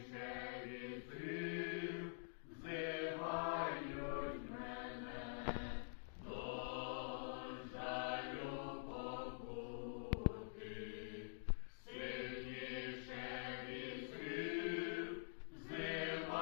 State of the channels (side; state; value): right; silent; digital silence